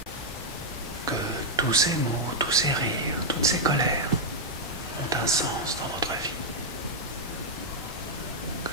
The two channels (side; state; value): both; normal; correlation -0.01